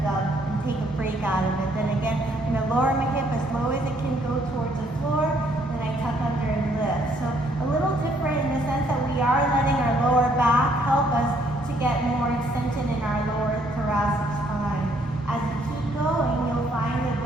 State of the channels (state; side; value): normal; both; correlation 0.67